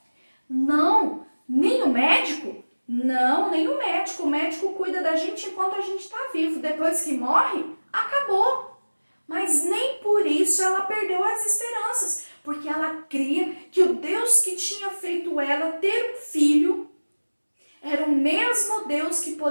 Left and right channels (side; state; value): both; inverted; correlation -1.00